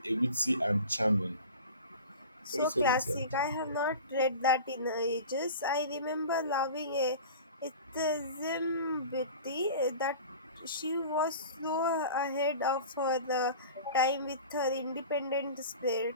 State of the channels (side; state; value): both; inverted; correlation -0.37